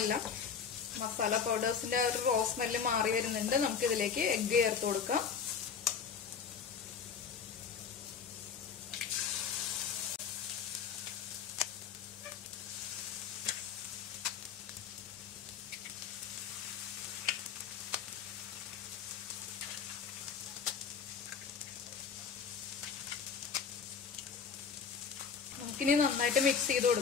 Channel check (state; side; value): quieter; right; 6.5 dB